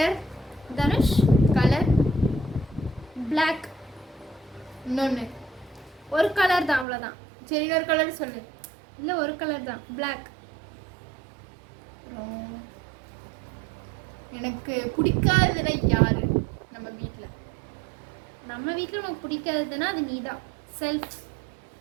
Dhanush. Colour Black. இன்னொன்று ஒரு கலர் தான், அவ்வளோதான். சரி இன்னொரு கலர் சொல்லு. இல்லை ஒரு கலர் தான், Black. எனக்கு பிடிக்காததுல யாரு நம்ம வீட்டில்? நம்ம வீட்டில் உனக்கு பிடிக்காததுன்னா அது நீ தான். செல்ஃப்.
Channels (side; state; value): left; drops out; at 6.9 s